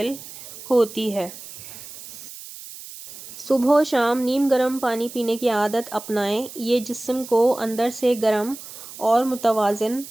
ہوتی ہے۔ صبح و شام نیم گرم پانی پینے کی عادت اپنائیں، یہ جسم کو اندر سے گرم اور متوازن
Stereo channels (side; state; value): right; noise; hiss, 14 dB below the sound